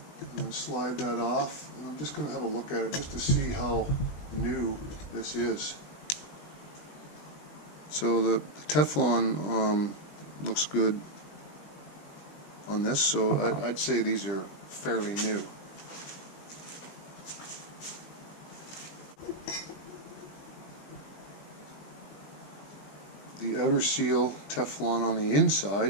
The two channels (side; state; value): right; late; 20 ms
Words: and then slide that off. And I'm just going to have a look at it just to see how new this is. So the Teflon looks good on this, so I'd say these are fairly new. The outer seal Teflon on the